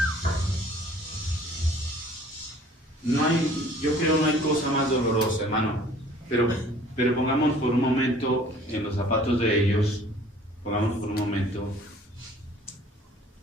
Yo creo no hay cosa más dolorosa, hermano, pero pongamos por un momento en los zapatos de ellos, pongamos por un momento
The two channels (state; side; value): normal; both; correlation 0.53